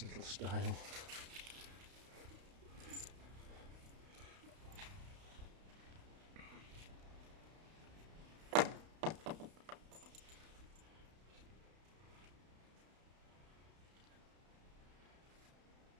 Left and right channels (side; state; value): left; late; 32 ms